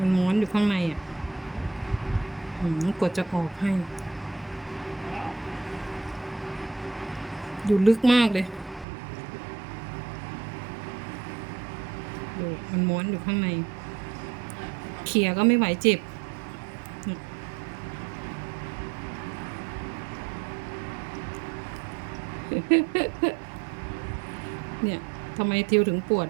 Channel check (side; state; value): left; drops out; at 8.8 s